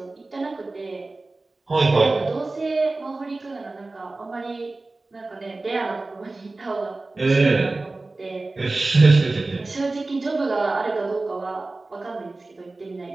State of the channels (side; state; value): left; quieter; 3.2 dB